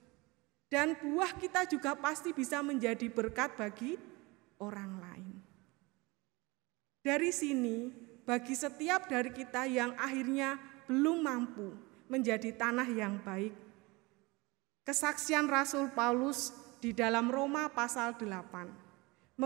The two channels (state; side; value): quieter; left; 24.4 dB